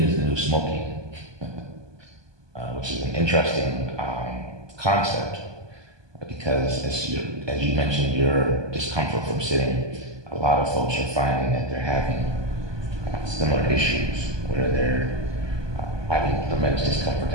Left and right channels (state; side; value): late; left; 1.2 ms